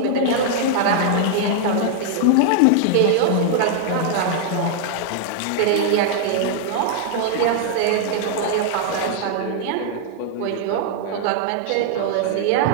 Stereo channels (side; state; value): both; different; correlation 0.00